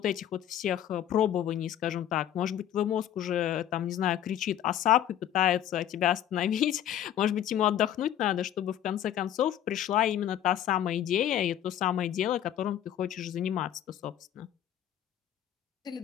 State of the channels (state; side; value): quieter; right; 11.0 dB